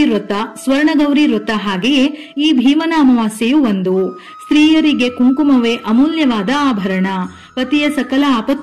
ವ್ರತ, ಸ್ವರ್ಣಗೌರಿ ವ್ರತ, ಹಾಗೆಯೇ ಈ ಭೀಮನ ಅಮಾವಾಸ್ಯೆಯು ಒಂದು. ಸ್ತ್ರೀಯರಿಗೆ ಕುಂಕುಮವೇ ಅಮೂಲ್ಯವಾದ ಆಭರಣ. ಪತಿಯ ಸಕಲ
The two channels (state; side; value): identical; both; correlation 1.00